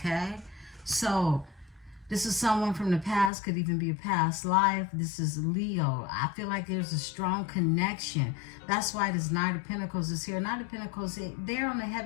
So this is someone from the past, could even be a past life. This is Leo. I feel like there's a strong connection. That's why this Knight of Pentacles is here. Knight of Pentacles, they're on a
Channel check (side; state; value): right; drops out; at 3.3 s